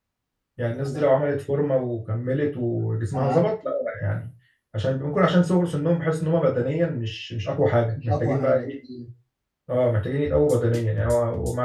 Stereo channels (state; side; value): identical; both; correlation 1.00